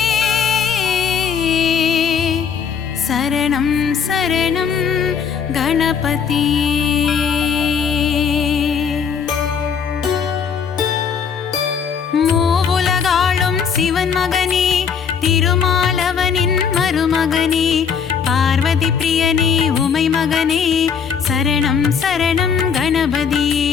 சரணம் சரணம் கணபதியே. மூவுலகாளும் சிவன் மகனே திருமாலவனின் மருமகனே பார்வதி பிரியனே உமை மகனே சரணம் சரணம் கணபதியே.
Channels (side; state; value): right; quieter; 6.8 dB